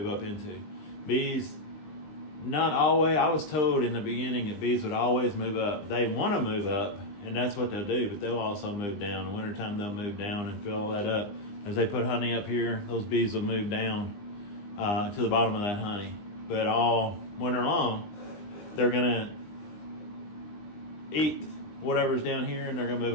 up into. Bees, not always. I was told in the beginning that bees would always move up. They want to move up, and that's what they'll do, but they'll also move down. In the wintertime, they'll move down and fill that up. As they put honey up here, those bees will move down to the bottom of that honey. but all winter long, they're gonna eat whatever's down here, and they're gonna move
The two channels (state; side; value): late; right; 20 ms